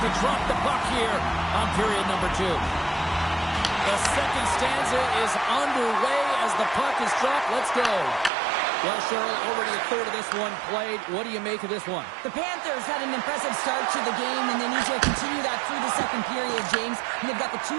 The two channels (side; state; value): left; drops out; at 8.3 s